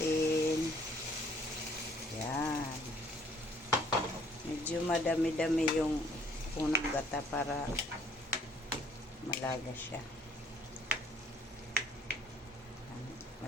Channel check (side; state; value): both; normal; correlation 0.61